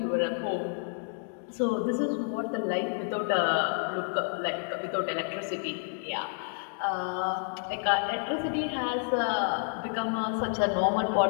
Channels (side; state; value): right; silent; 58 dB below the other